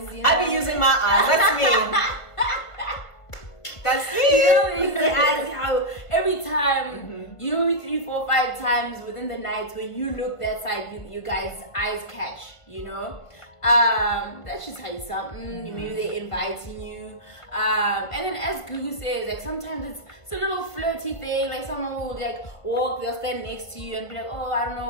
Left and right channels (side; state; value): right; late; 1.5 ms